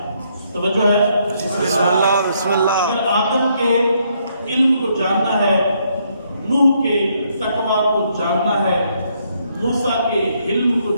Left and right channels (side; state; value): both; inverted; correlation -0.73